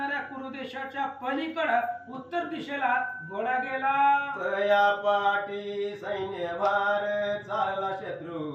कुरुदेशाच्या पलीकडं उत्तर दिशेला घोडा गेला. तया पाठी सैन्य भार, चालला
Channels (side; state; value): both; identical; correlation 1.00